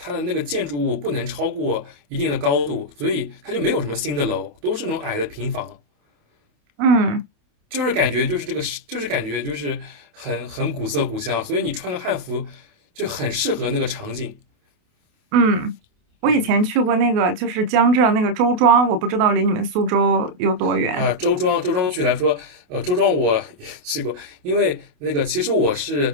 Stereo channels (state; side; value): late; left; 28 ms